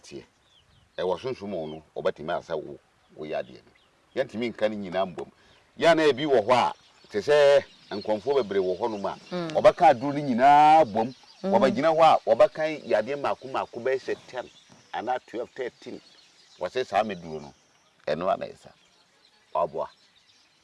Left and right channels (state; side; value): identical; both; correlation 1.00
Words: e wo sunsun ono obatimi asa wo yade no yantimi nka ni nyina mbom ya na ebi wo ho a te se nkonfo bebre wo ho no ma obaka aduru ni nyina bom obagina ho a obakan yade mako be se 10 ana 12 13 wase sa meduro no eno ana isa oboa